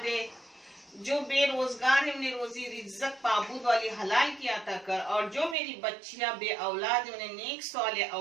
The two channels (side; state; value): left; drops out; at 5.6 s